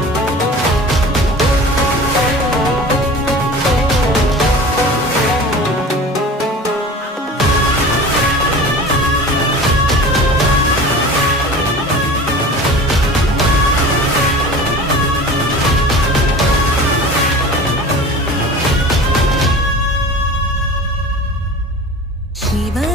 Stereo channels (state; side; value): normal; both; correlation 0.38